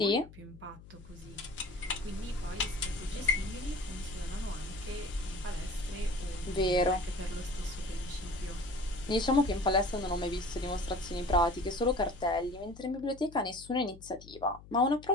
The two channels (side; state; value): left; noise; hum, 19 dB below the sound